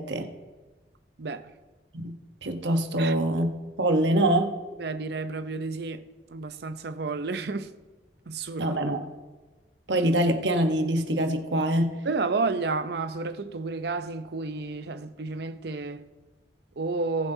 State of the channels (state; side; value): normal; both; correlation 0.31